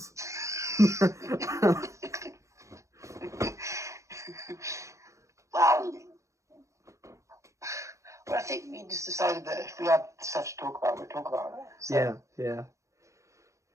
Well, I think we just decided that if we had stuff to talk about, we'd talk about it. So. Yeah.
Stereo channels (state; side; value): late; left; 0.15 ms